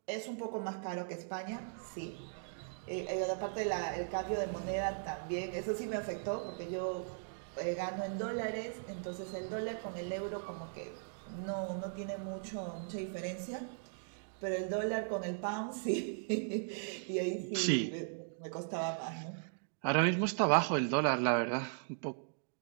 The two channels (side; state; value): left; silent; digital silence